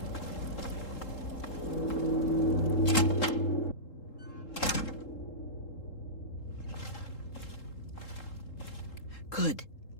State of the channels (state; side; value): late; right; 3.7 ms